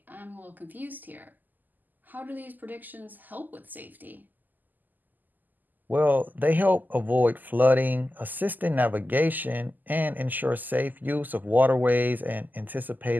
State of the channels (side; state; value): left; late; 0.085 ms